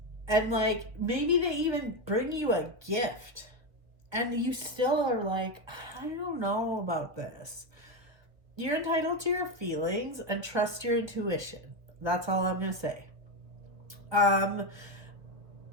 and like, maybe they even bring you a gift, and you still are like, I don't know about this. You're entitled to your feelings and trust your intuition. That's all I'm going to say.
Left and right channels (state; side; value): late; left; 1.4 ms